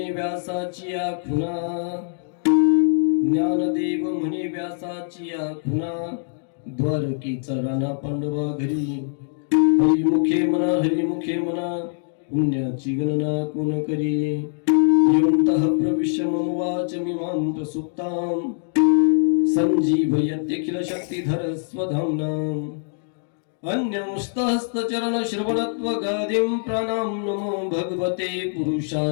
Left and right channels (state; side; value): silent; right; digital silence